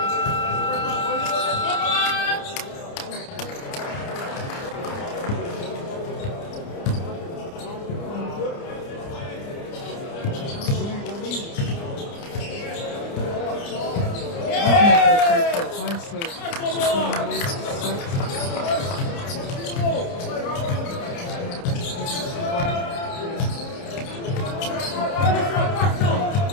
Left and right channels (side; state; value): right; late; 29 ms